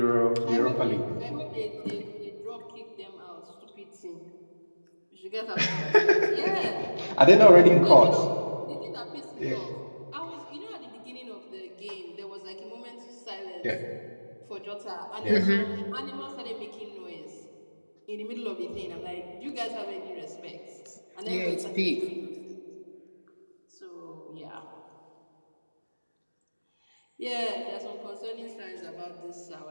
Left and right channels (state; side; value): inverted; both; correlation -1.00